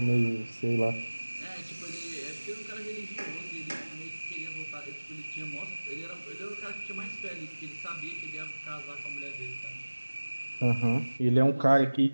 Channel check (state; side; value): inverted; both; correlation -1.00